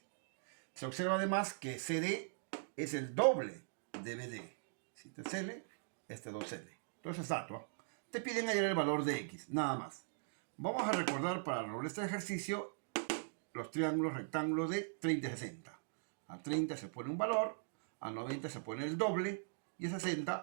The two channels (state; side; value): silent; left; digital silence